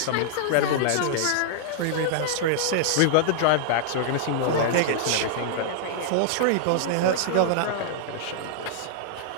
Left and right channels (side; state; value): both; different; correlation -0.01